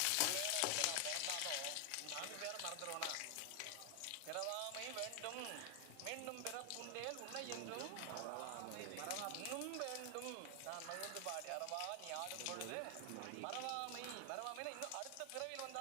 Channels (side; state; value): both; different; correlation 0.00